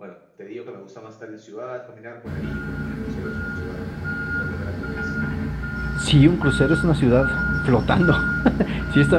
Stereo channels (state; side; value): identical; both; correlation 1.00